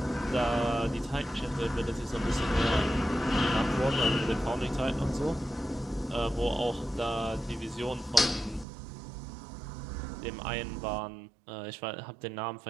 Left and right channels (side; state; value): left; drops out; at 8.7 s